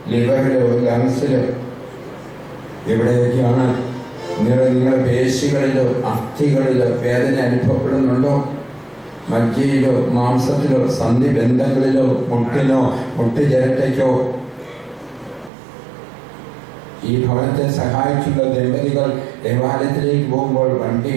ലിവറിലോ ലങ്സിലോ എവിടെയൊക്കെയാണ് നിങ്ങളുടെ പേശികളിലോ അസ്ഥികളിലോ വേദന അനുഭവപ്പെടുന്നുണ്ടോ? മജ്ജയിലോ മാംസത്തിലോ സന്ധിബന്ധങ്ങളിലോ മുട്ടിനോ മുട്ടുചിരട്ടയ്ക്കോ? ഈ ഭവനത്തെ സഹായിച്ചുള്ള ദമ്പതികൾ ദേവാലയത്തിലേക്ക് പോകുമ്പോൾ വണ്ടി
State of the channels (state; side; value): drops out; left; at 15.5 s